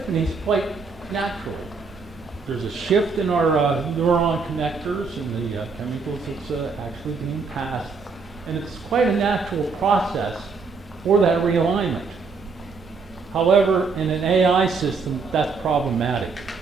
quite naturally. There's a shift in our neuron connectors and the chemicals that's actually being passed. And it's quite a natural process for that realignment. However, in an AI system, that's problematic.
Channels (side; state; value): left; quieter; 4.7 dB